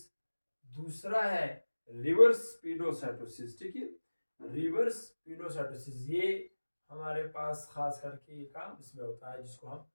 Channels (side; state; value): both; inverted; correlation -1.00